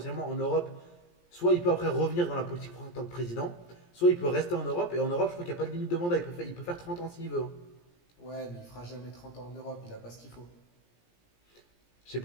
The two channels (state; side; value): late; right; 17 ms